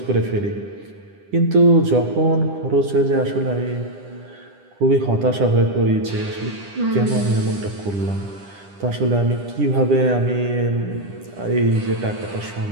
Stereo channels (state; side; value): late; left; 10 ms